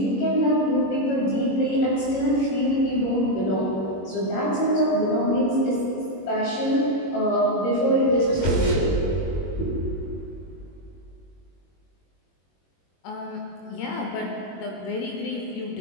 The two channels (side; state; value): right; late; 21 ms